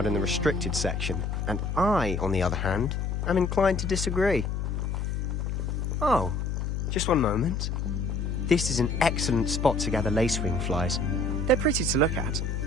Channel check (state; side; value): noise; left; hum, 1 dB below the sound